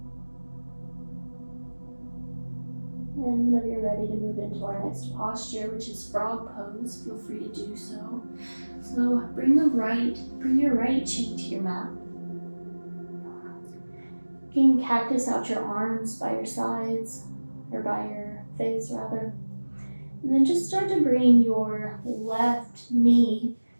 And whenever you're ready to move into our next posture, which is frog pose, feel free to do so. So bring your right cheek to your mat. You can cactus out your arms by your sides, or by your face rather. And then just start to bring your left knee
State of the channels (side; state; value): both; inverted; correlation -1.00